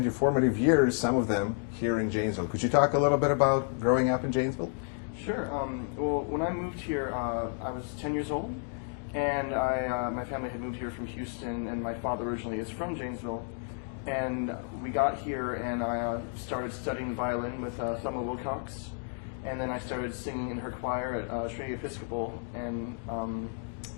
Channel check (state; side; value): silent; right; 57 dB below the other